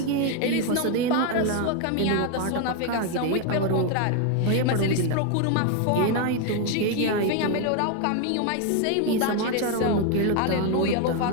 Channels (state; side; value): different; both; correlation 0.01